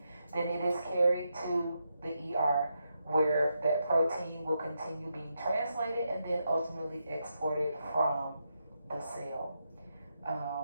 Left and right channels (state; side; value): inverted; both; correlation -0.84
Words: then it is carried to the ER, where that protein will continue being translated and then ultimately exported from the cell.